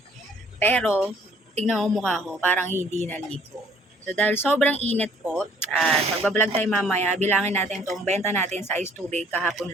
Pero, tignan mo mukha ko, parang hindi naligo. So, dahil sobrang init po, at magbablog tayo mamaya, bilangin natin itong benta natin sa ice tubig kahapon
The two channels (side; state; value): both; normal; correlation 0.60